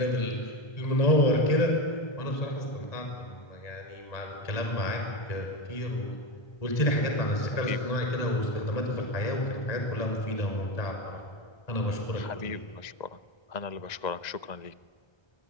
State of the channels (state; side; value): late; right; 1.3 ms